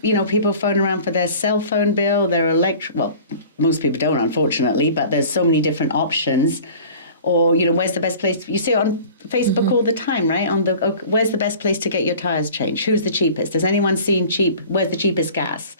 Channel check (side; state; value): both; inverted; correlation -0.44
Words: people phone around for their cell phone bill, their well, most people don't, unfortunately, but there's so many different options. Or, where's the best place? You see it on Facebook all the time, right? Where's the best place to get your tires changed? Who's the cheapest? Has anyone seen where's the cheapest gas?